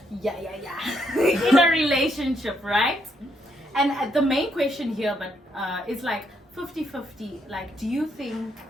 Yeah. In a relationship, right? And the main question here, is like 50-50. Like, do you think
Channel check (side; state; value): both; normal; correlation 0.75